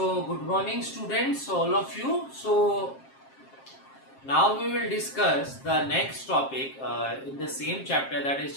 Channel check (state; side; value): late; right; 7.5 ms